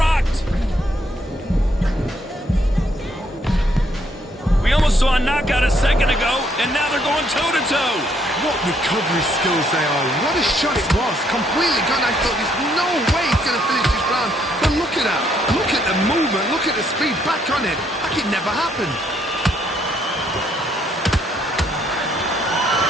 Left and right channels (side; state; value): both; normal; correlation 0.70